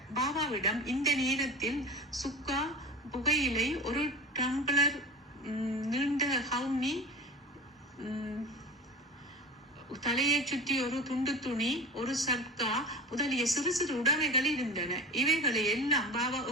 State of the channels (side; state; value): both; normal; correlation 0.32